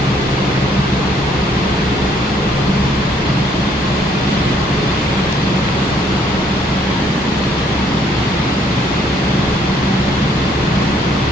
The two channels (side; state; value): both; normal; correlation 0.66